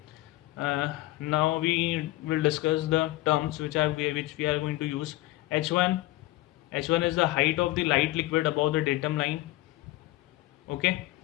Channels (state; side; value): quieter; right; 18.0 dB